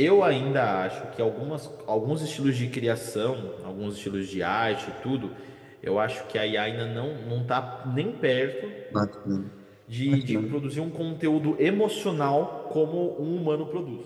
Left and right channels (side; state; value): both; identical; correlation 1.00